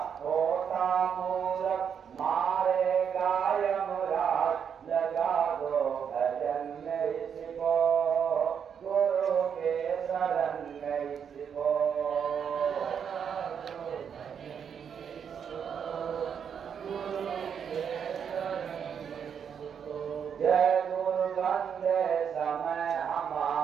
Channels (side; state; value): left; quieter; 7.6 dB